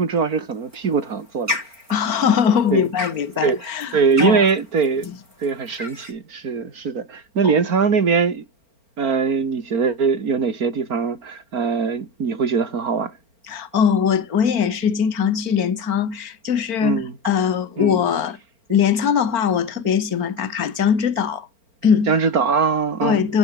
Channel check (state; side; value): late; left; 4.4 ms